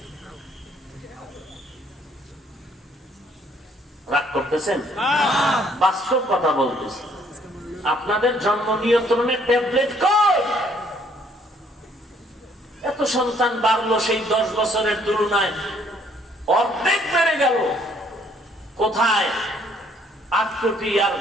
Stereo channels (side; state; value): both; normal; correlation 0.64